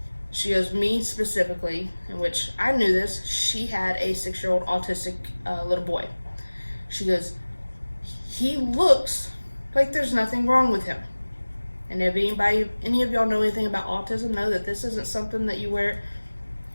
she goes, me specifically, in which I knew this, she had a 6-year-old autistic little boy. She goes, he looks like there's nothing wrong with him. And if any of y'all know anything about autism, know that this isn't something that you wear.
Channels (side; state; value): both; inverted; correlation -1.00